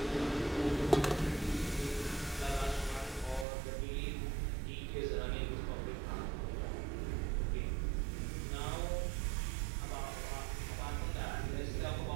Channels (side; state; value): left; drops out; at 3.5 s